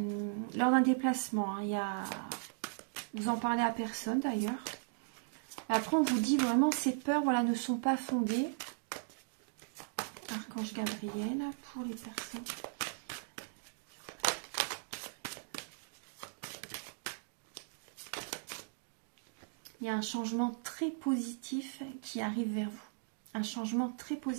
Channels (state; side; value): silent; left; digital silence